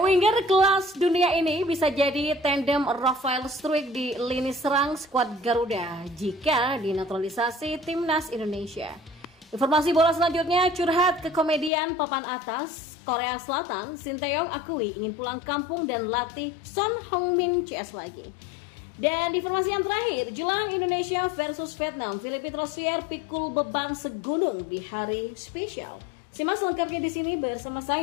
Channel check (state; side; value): drops out; right; at 11.7 s